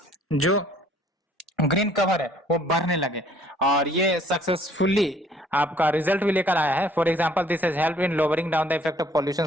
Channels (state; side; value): normal; both; correlation 0.59